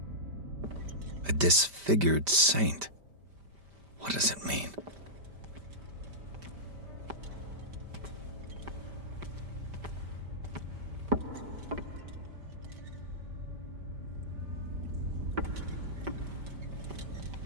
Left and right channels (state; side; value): late; left; 5.1 ms